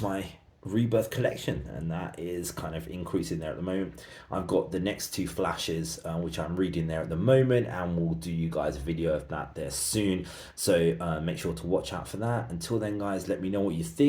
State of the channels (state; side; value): identical; both; correlation 1.00